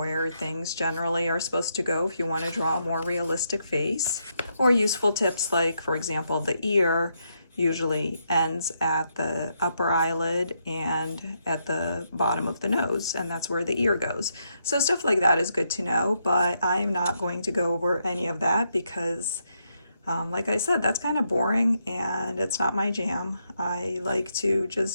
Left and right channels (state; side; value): inverted; both; correlation -0.79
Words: things generally are supposed to go if you want to draw a more realistic face. Or useful tips like, for example, the ear usually ends at the upper eyelid and at the bottom of the nose, and that's where the ear goes. So stuff like that is good to know, but I'm not going to go over any of that because like I said, that's kind of boring and it's not my jam. I like to